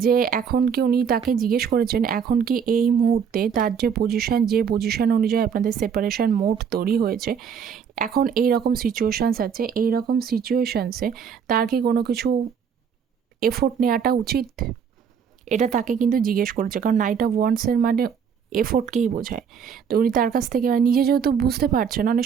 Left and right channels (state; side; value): quieter; left; 7.1 dB